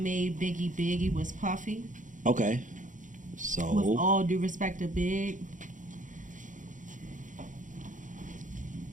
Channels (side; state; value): left; late; 0.37 ms